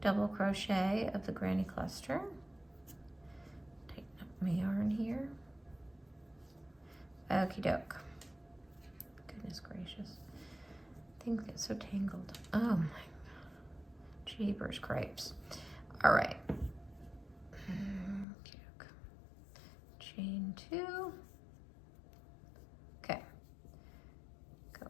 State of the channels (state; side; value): drops out; right; at 18.2 s